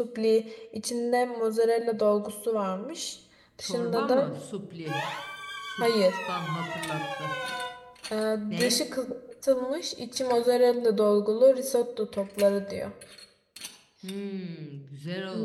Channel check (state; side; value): identical; both; correlation 1.00